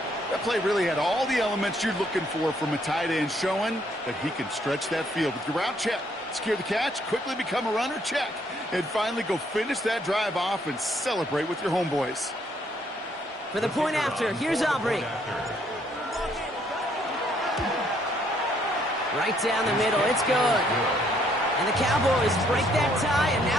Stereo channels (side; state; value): both; normal; correlation 0.68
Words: That play really had all the elements you're looking for from a tight end, showing that he can stretch that field with your route check, secure the catch, quickly become a runner check, and finally go finish that drive off and celebrate with your homeboys. For the point after, here's Aubrey. Right down the middle, it's good. And the Cowboys break that tie and